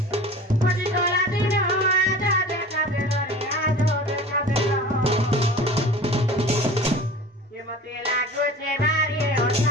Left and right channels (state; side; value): normal; both; correlation 0.39